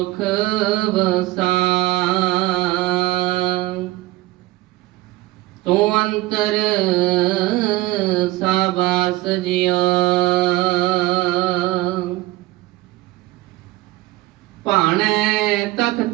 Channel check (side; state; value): left; quieter; 18.8 dB